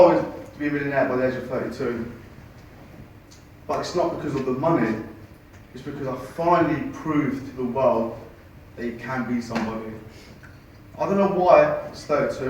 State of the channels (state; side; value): identical; both; correlation 1.00